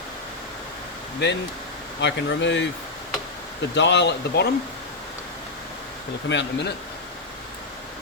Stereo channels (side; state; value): right; quieter; 3.3 dB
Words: Then I can remove the dial at the bottom. It'll come out in a minute.